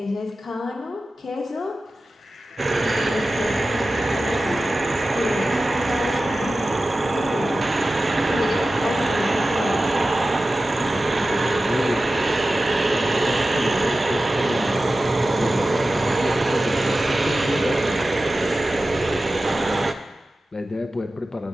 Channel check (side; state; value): both; normal; correlation 0.95